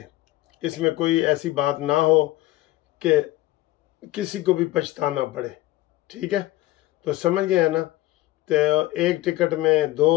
इसमें कोई ऐसी बात ना हो कि किसी को भी पछताना पड़े, ठीक है? तो समझ गए हैं ना? तो एक टिकट में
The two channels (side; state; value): right; quieter; 16.8 dB